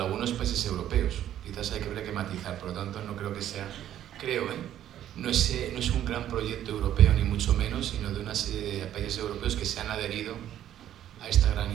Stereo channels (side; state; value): left; quieter; 11.5 dB